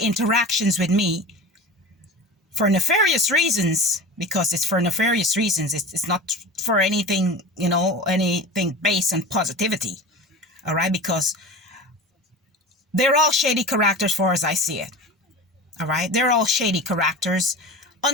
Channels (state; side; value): normal; both; correlation 0.33